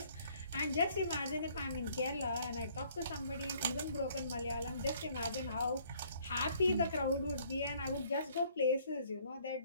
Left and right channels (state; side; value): inverted; both; correlation -0.61